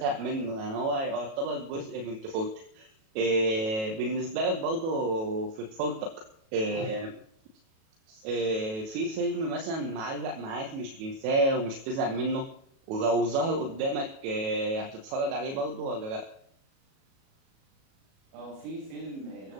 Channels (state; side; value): late; left; 37 ms